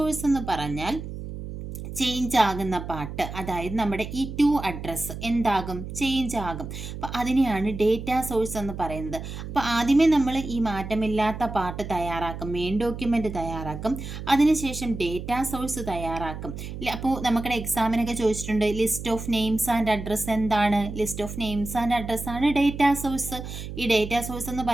എന്ന് പറഞ്ഞാൽ ചേഞ്ച് ആകുന്ന പാർട്ട്, അതായത് നമ്മുടെ ഈ 2 അഡ്രസ്സ് എന്താകും, ചേഞ്ച് ആകും. അപ്പോൾ അതിനെയാണ് ഡേറ്റാ സോഴ്സ് എന്ന് പറയുന്നത്. അപ്പോൾ ആദ്യമേ നമ്മൾ ഈ മാറ്റമില്ലാത്ത പാർട്ട് തയ്യാറാക്കും, മെയിൻ ഡോക്യുമെൻ്റ് തയ്യാറാക്കും, അതിനുശേഷം ഡേറ്റാ സോഴ്സ് തയ്യാറാക്കും. അപ്പോൾ നമ്മുടെ എക്സാമിനൊക്കെ ചോദിച്ചിട്ടുണ്ട്, list of names and address എന്താണ്, list of names and address ആണ് ഡേറ്റാ സോഴ്സ്. ഈ ഡേറ്റാ സോഴ്സ് എന്ന്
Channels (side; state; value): right; noise; hum, 9 dB below the sound